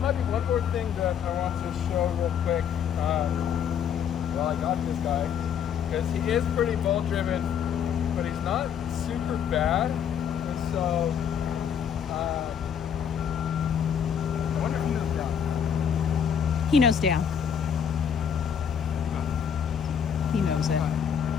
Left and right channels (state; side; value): quieter; right; 8.1 dB